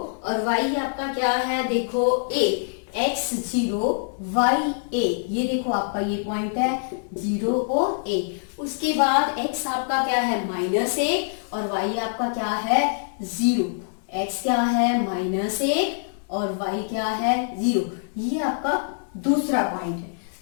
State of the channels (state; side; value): silent; right; 62 dB below the other